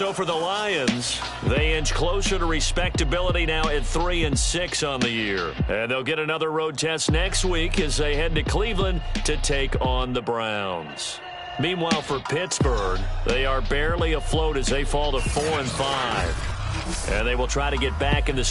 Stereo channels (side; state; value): both; identical; correlation 1.00